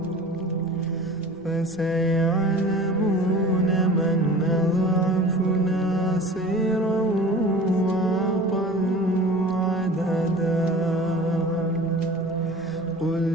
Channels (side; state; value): both; normal; correlation 0.41